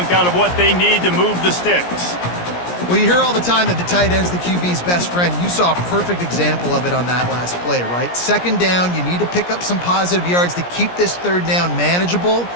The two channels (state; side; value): late; right; 17 ms